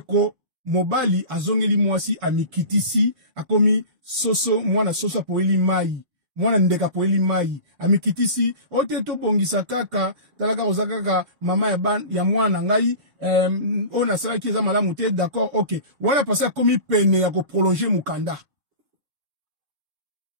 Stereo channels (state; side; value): late; left; 7.2 ms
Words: mobali azongeli mwasi amikitisi akomi soso mwana soso poeli mai mwana ndeka poeli mai amikitisi ote to bongisa kaka talaka ozakaka mama ya mwana ngai ona sala ki eza malamu te d'accord OK wala pasa komi pene ya ko prolonger mukanda